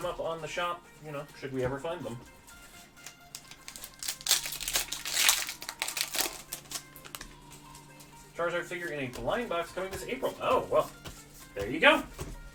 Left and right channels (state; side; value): identical; both; correlation 1.00